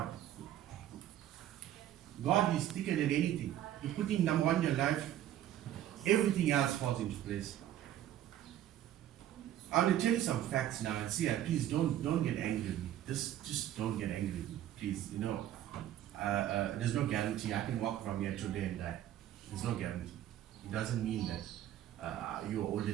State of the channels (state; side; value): quieter; left; 12.1 dB